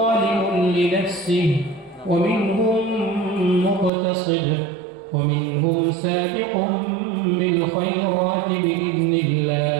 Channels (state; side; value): drops out; left; at 3.9 s